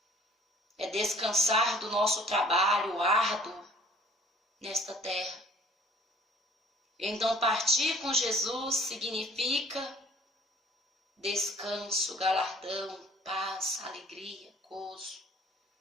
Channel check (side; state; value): both; normal; correlation 0.54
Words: É descansar do nosso trabalho árduo nesta terra. Então, partir com Jesus significa descanso, galardão, paz, alegria, gozo.